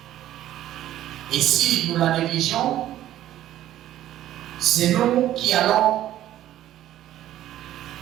Et si nous la négligeons, c'est nous qui allons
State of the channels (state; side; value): quieter; left; 12.9 dB